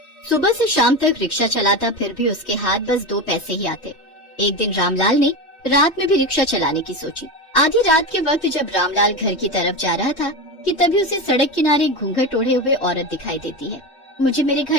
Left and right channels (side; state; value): right; late; 3.1 ms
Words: सुबह से शाम तक रिक्शा चलाता, फिर भी उसके हाथ बस 2 पैसे ही आते। एक दिन रामलाल ने रात में भी रिक्शा चलाने की सोची। आधी रात के वक्त जब रामलाल घर की तरफ जा रहा था कि तभी उसे सड़क किनारे घूंघट ओढ़े हुए औरत दिखाई देती है। मुझे मेरे